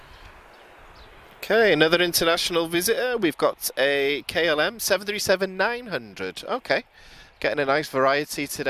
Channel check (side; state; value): both; identical; correlation 1.00